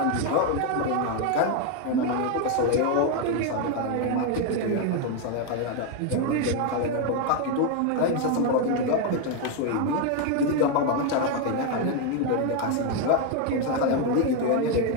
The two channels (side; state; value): both; different; correlation 0.01